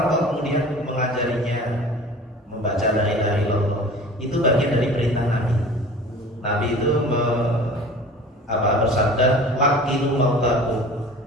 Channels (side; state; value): both; normal; correlation 0.42